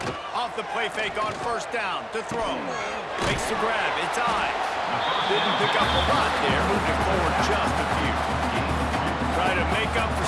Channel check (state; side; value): identical; both; correlation 1.00